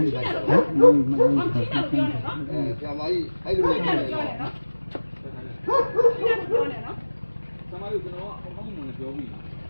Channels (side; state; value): both; inverted; correlation -1.00